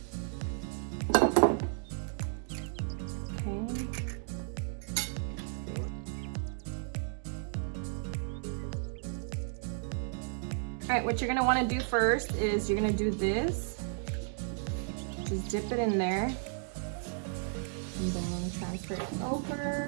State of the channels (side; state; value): left; silent; digital silence